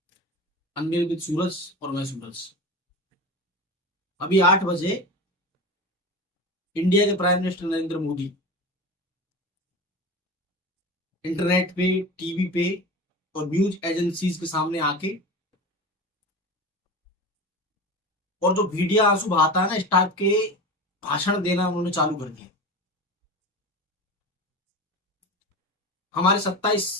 अनमेल विद सूरज और मैं सूरज। अभी 8 बजे इंडिया के prime minister Narendra Modi internet पे, टीवी पे और न्यूज एजेंसीज के सामने आके और जो मीडिया आंसू बहाता है ना, इस टाइप के भाषण देना उन्होंने चालू कर दिया। हमारे 27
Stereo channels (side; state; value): both; normal; correlation 0.29